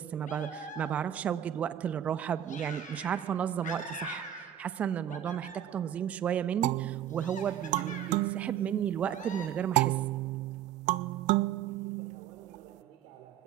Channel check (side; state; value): left; quieter; 10.4 dB